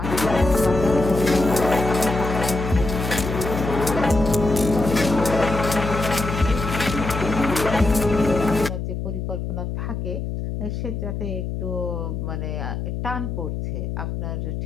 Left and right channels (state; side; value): noise; left; hum, 4 dB below the sound